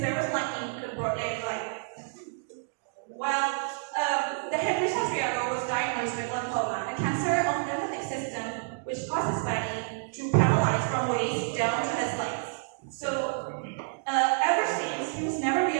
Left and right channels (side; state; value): left; silent; digital silence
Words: there was lightning in the broad daylight. Well, the Henry Santiago was diagnosed with lymphoma, a cancer of the lymphatic system which causes body to paralyze from waist down to his legs. So, ever since, he was never be